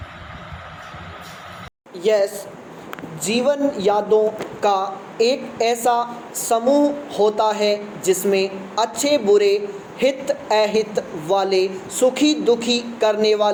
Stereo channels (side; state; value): both; identical; correlation 1.00